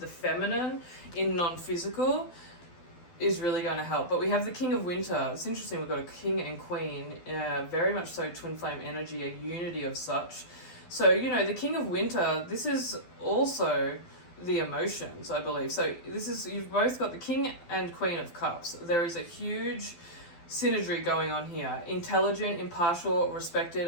feminine in non-physical is really going to help. But we have the King of Winter. It's interesting, we've got a king and queen, very much so twin flame energy, a unity of such. So, the King of Winter, this is also the emotions, I believe. So you've both got the King and Queen of Cups. There is a huge synergy going on here. Intelligent, impartial, respected,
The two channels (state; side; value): late; right; 12 ms